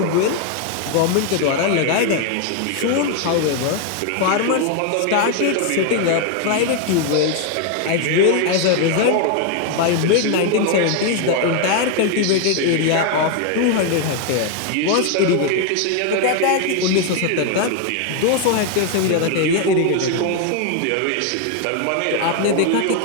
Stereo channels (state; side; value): different; both; correlation 0.01